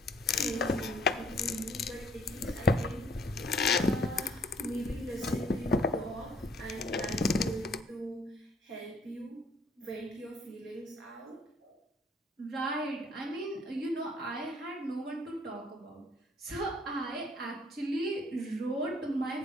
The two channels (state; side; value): normal; both; correlation 0.62